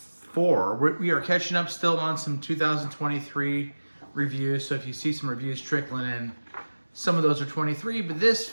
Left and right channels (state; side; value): inverted; both; correlation -1.00